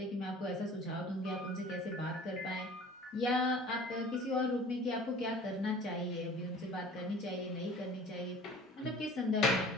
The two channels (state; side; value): normal; both; correlation 0.45